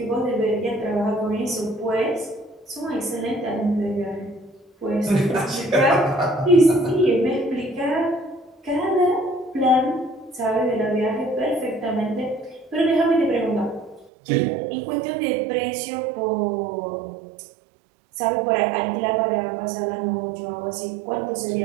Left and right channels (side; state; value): left; drops out; at 14.1 s